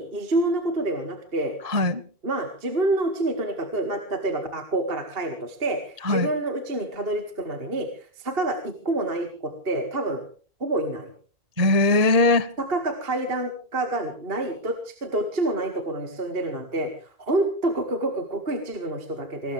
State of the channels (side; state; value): left; late; 1.8 ms